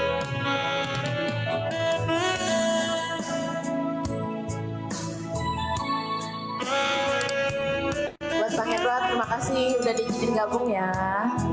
Buat Bang Edward, terima kasih udah diizinin gabung ya.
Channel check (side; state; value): both; identical; correlation 1.00